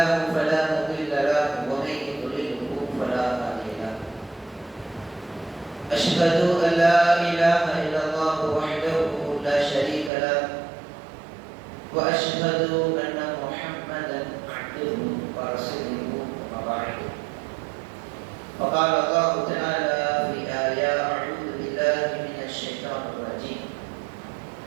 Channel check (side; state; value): left; drops out; at 10.1 s